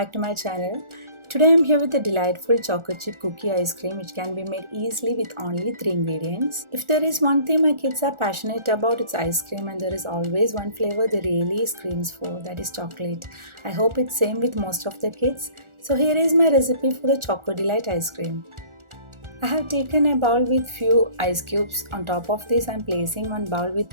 to my channel. Today I'm here with a delightful chocolate chip cookie ice cream which can be made easily with only 3 ingredients. If there is one thing my kids are passionate about, it's ice cream, and there is always one flavor they really screams for, that is chocolate. I hope it's same with most of the kids. So here is my recipe for the Choco Delight ice cream. I have taken a bowl with few ice cubes. On top of this I'm placing one bowl with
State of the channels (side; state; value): left; late; 1.4 ms